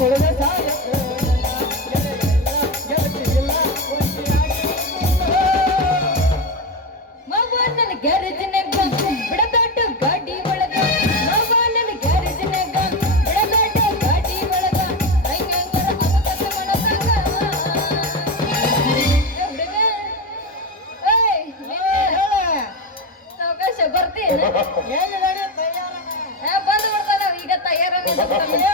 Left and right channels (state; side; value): normal; both; correlation 0.16